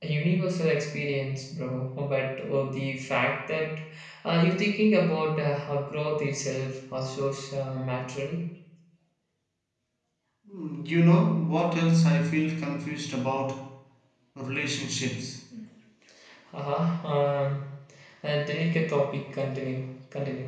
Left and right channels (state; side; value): identical; both; correlation 1.00